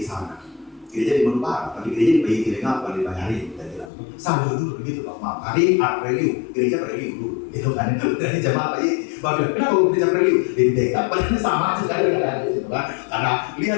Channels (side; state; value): right; drops out; at 3.9 s